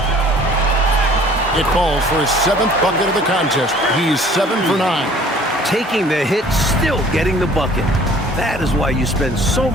It falls for his 7th bucket of the contest. He's 7 for 9. Taking the hit, still getting the bucket. That is why you spend so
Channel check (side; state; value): both; normal; correlation 0.52